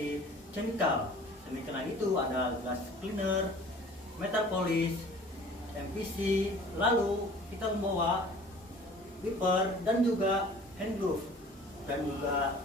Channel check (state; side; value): normal; both; correlation 0.48